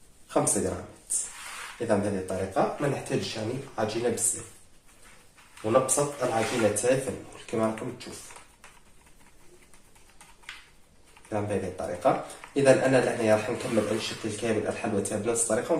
5 غرامات. اذا بهذه الطريقه ما نحتاجش يعني عجينه بزاف، ونبسط العجينه تاعي في المول كما راكم تشوفوا. اذا بهذه الطريقه، اذا انا لهنا راح نكمل نشكل كامل الحلوى تاعي بنفس الطريقه، ومن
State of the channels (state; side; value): identical; both; correlation 1.00